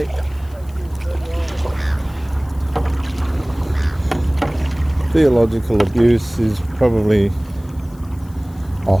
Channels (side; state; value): left; noise; hiss, 28 dB below the sound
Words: Theological abuse is probably a